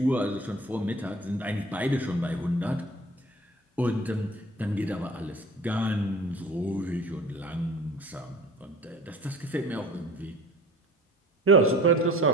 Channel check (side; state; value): both; normal; correlation 0.45